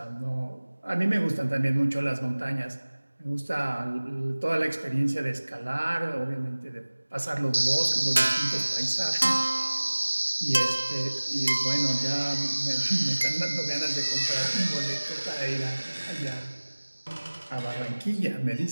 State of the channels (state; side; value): inverted; both; correlation -1.00